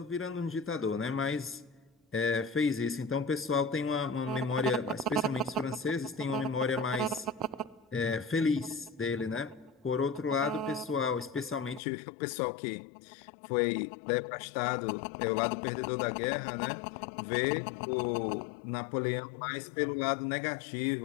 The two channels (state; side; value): drops out; right; at 11.8 s